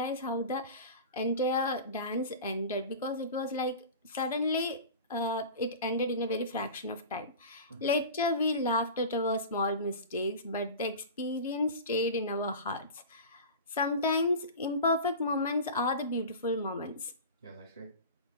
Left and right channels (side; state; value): both; inverted; correlation -0.32